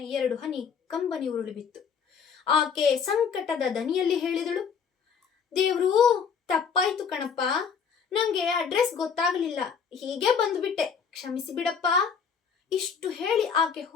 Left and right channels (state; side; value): quieter; right; 6.5 dB